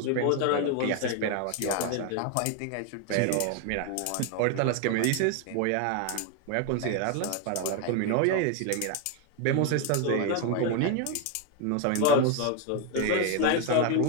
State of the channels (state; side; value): different; both; correlation 0.01